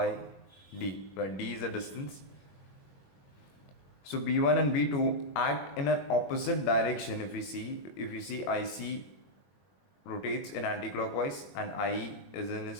D, where D is the distance. So B1 and B2 act in an opposite direction. If you see IC rotates in anti-clockwise and IE is in a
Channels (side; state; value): right; late; 21 ms